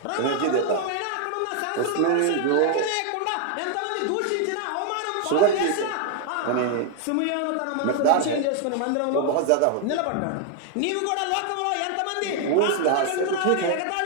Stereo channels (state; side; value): different; both; correlation 0.00